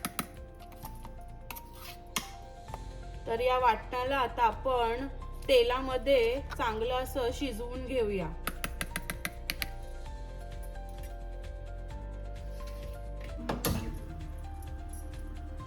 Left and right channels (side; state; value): both; identical; correlation 1.00